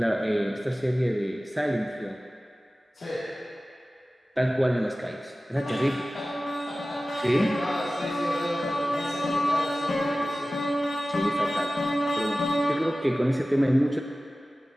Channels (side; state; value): both; normal; correlation 0.96